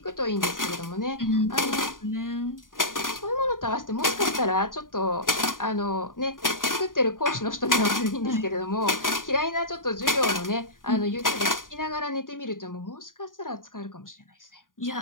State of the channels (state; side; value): late; right; 0.89 ms